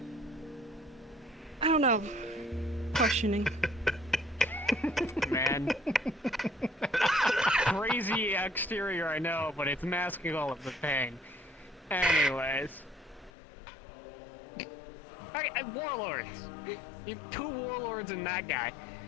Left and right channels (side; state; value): right; drops out; at 13.3 s